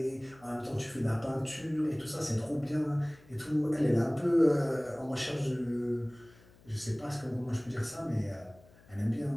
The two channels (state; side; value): noise; left; hum, 26 dB below the sound